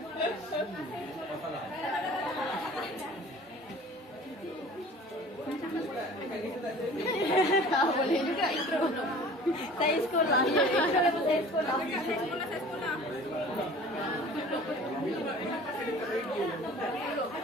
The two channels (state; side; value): normal; both; correlation 0.45